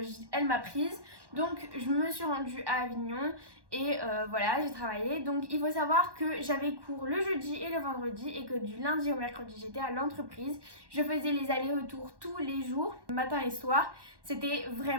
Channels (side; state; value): left; late; 1.1 ms